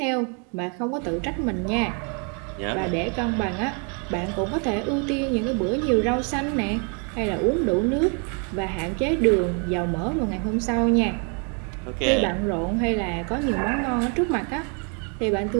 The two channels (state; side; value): quieter; left; 37.5 dB